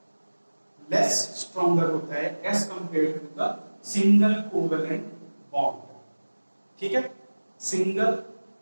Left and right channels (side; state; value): both; inverted; correlation -1.00